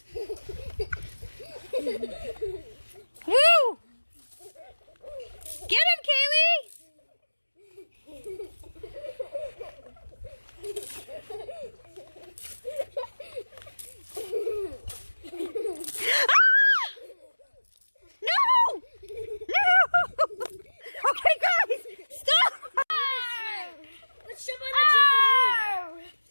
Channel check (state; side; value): inverted; both; correlation -1.00